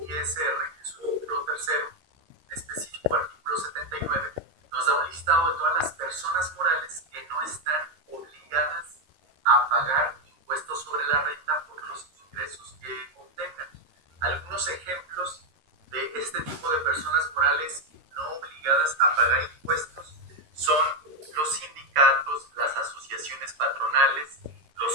ISR, en su título tercero, en específico artículo 79, nos da un listado de todas las personas morales que no están obligadas a pagar impuestos sobre la renta por los ingresos que obtengan. Algunos ejemplos de este tipo de personas morales no obligadas a pagar impuestos son los sindicatos, las asociaciones patronales,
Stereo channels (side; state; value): left; late; 13 ms